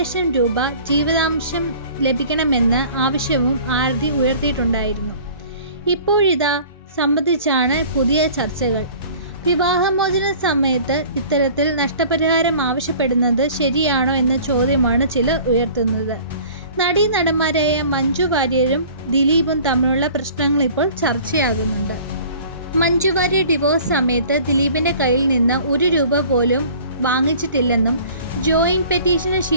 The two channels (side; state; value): both; inverted; correlation -0.47